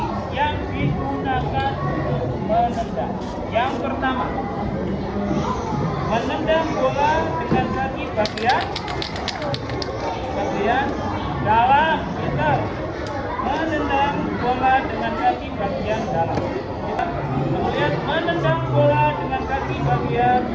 yang digunakan untuk menendang. Yang pertama, menendang bola dengan kaki bagian dalam. Pintar. Menendang bola dengan kaki bagian dalam. Kemudian menendang bola dengan kaki bagian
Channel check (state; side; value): identical; both; correlation 1.00